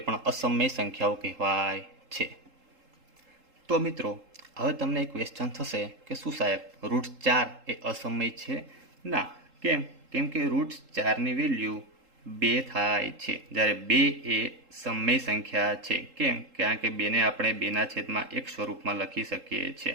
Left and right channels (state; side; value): late; left; 3.7 ms